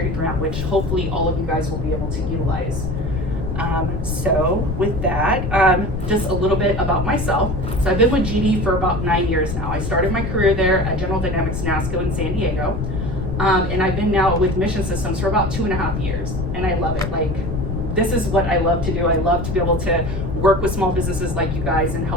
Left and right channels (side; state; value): left; noise; rumble, 3 dB below the sound